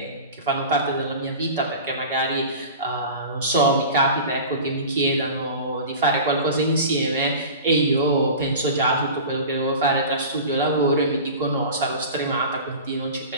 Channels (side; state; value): both; inverted; correlation -0.35